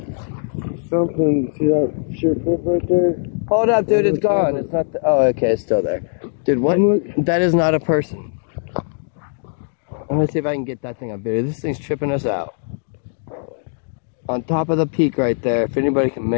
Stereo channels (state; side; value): silent; right; digital silence